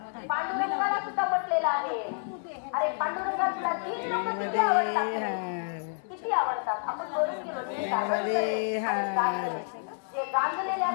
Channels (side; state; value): right; silent; 57 dB below the other